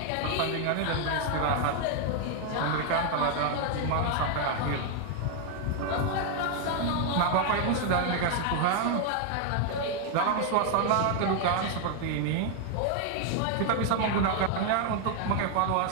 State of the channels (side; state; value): both; different; correlation 0.00